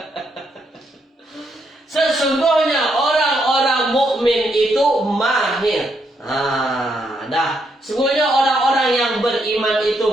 Sesungguhnya orang-orang mukmin itu mahir. Dah. Sesungguhnya orang-orang yang beriman itu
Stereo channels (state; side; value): normal; both; correlation 0.77